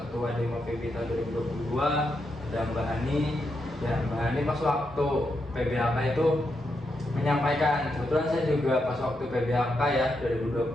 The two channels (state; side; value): normal; both; correlation 0.83